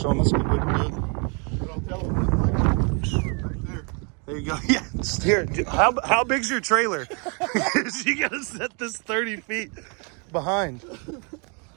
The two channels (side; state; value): left; quieter; 35.4 dB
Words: us what we can do. But I'll tell him that right there. There you go. Yeah. Just here. How big's your trailer? You got to set this 30 feet behind.